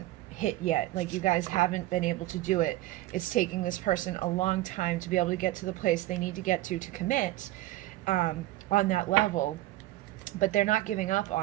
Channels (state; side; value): quieter; left; 16.8 dB